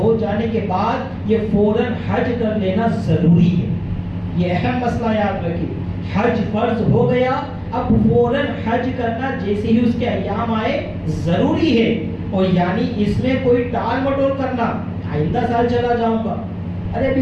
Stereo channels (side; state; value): both; identical; correlation 1.00